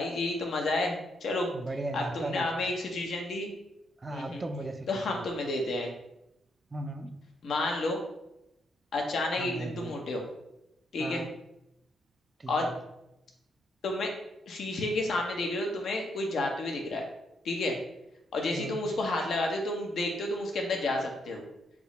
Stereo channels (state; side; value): normal; both; correlation 0.76